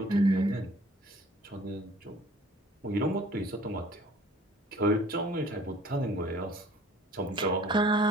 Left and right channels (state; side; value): normal; both; correlation 0.52